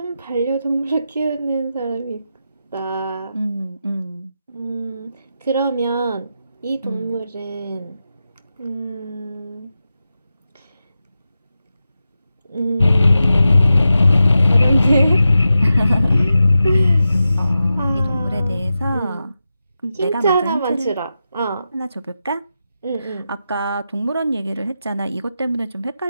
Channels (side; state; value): both; inverted; correlation -0.90